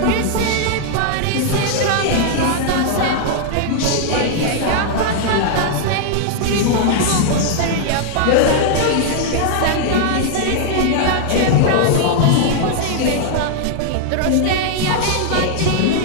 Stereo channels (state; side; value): different; both; correlation -0.01